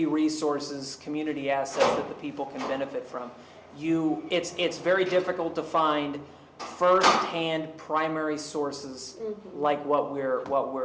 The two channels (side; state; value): both; identical; correlation 1.00